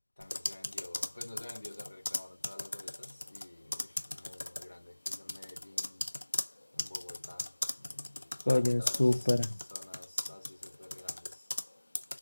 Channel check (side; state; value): both; inverted; correlation -1.00